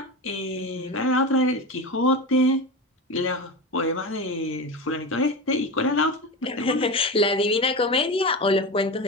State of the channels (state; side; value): normal; both; correlation 0.23